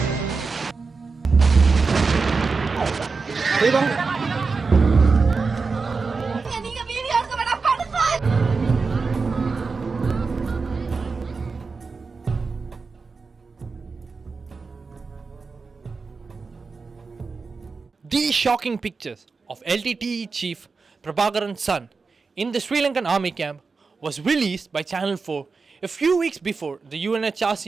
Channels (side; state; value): left; quieter; 4.5 dB